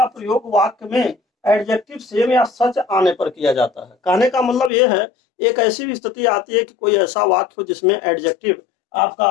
प्रयोग वाक्य में एडजेक्टिव सेम या सच आने पर किया जाता है। कहने का मतलब यह है, एक ऐसी भी स्थिति आती है कि कोई ऐसा वाक्य हो जिसमें एडजेक्टिव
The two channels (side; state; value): right; drops out; at 4.7 s